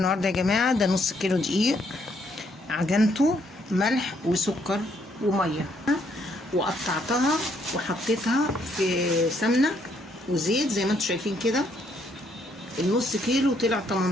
يا جماعه. ده نص كيلو دقيق، عجنته ملح وسكر وميه، وقطعتها وحطيتها في سمنه وزيت زي ما انتم شايفين كده. النص كيلو طلع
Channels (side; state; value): both; normal; correlation 0.71